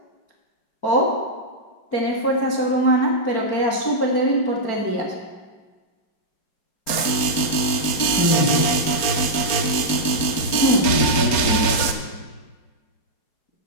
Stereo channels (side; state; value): right; late; 4.4 ms